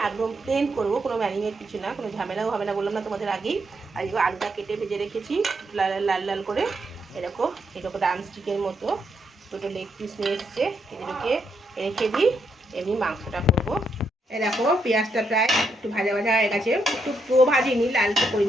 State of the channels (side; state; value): both; normal; correlation 0.78